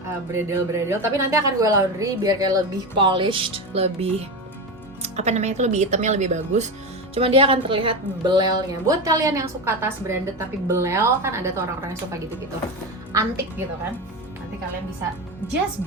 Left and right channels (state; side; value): normal; both; correlation 0.20